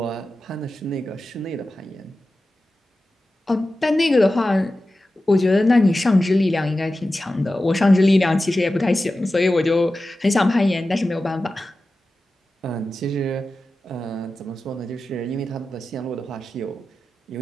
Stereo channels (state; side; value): normal; both; correlation 0.94